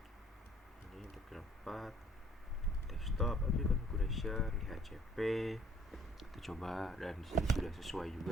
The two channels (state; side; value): normal; both; correlation 0.59